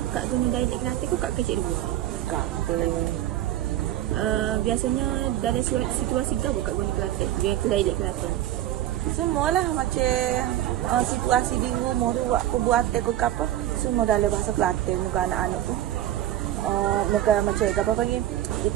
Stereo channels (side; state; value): left; quieter; 13.1 dB